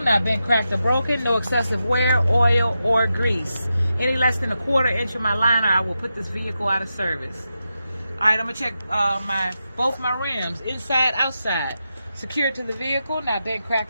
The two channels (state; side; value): inverted; both; correlation -0.88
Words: not bent, cracked, or broken, no excessive wear, oil, or grease. Any less than a quarter inch of my liner, I will put this vehicle out of service. Alright, I'm going to check both my rims, inside, outside. Secured to the vehicle, not bent,